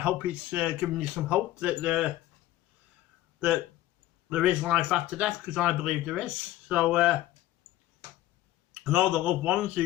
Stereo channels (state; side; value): quieter; right; 14.8 dB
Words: hope it's given you some hope that there is life after death, because I believe there is. So, and all the loved ones